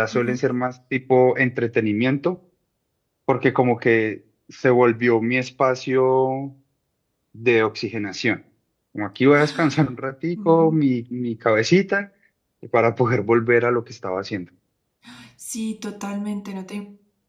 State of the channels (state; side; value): identical; both; correlation 1.00